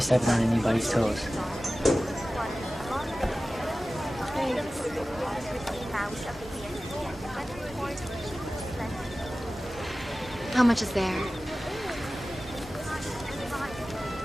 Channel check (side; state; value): both; normal; correlation 0.96